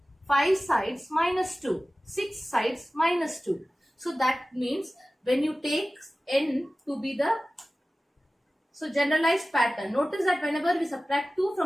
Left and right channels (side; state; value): both; normal; correlation 0.96